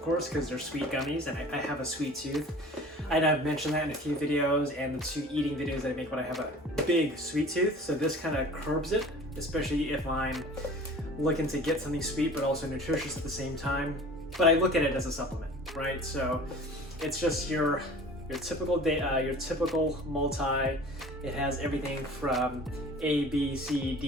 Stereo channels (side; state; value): both; normal; correlation 0.44